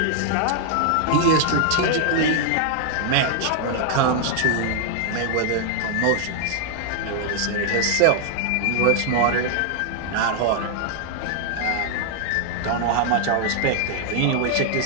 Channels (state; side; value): different; both; correlation 0.00